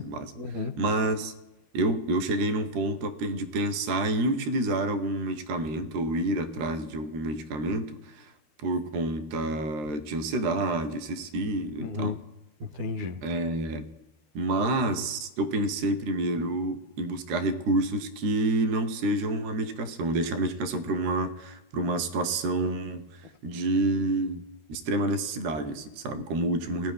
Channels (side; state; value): left; late; 13 ms